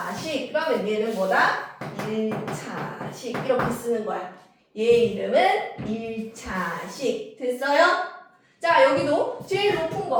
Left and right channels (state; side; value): identical; both; correlation 1.00